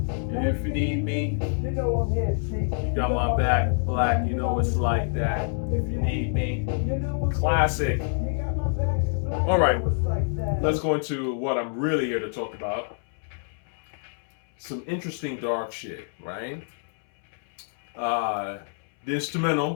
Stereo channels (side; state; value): right; silent; 61 dB below the other